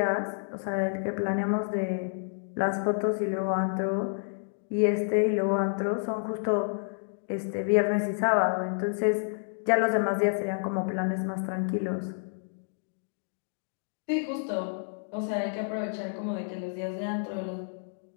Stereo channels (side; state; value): right; silent; digital silence